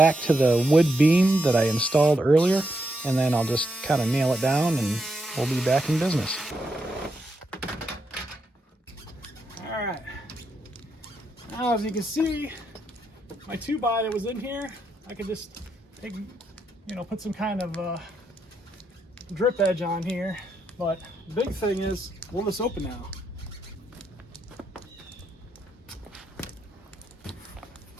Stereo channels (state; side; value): normal; both; correlation 0.81